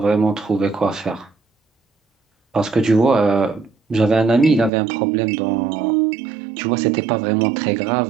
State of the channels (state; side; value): drops out; left; at 4.7 s